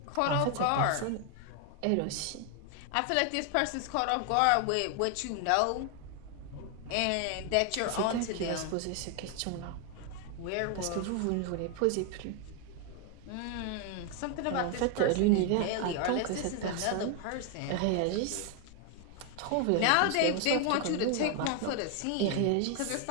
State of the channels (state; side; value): different; both; correlation 0.00